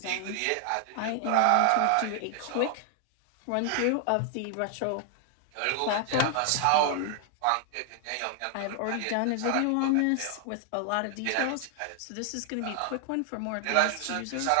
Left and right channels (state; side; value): different; both; correlation 0.00